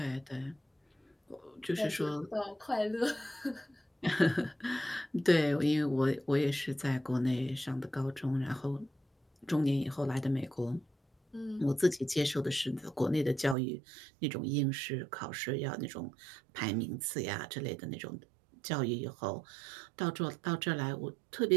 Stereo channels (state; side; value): drops out; left; at 13.6 s